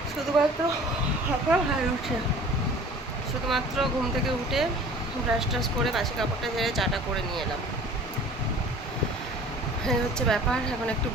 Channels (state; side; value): normal; both; correlation 0.46